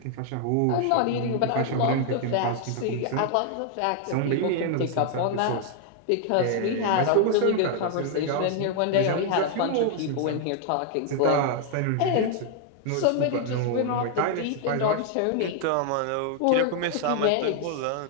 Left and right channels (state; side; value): different; both; correlation 0.00